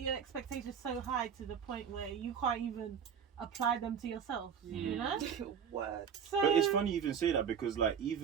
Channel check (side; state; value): left; quieter; 7.4 dB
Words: expectations so high to the point where you can't even apply them to yourself. You know. Word. So, But it's funny you even say that because like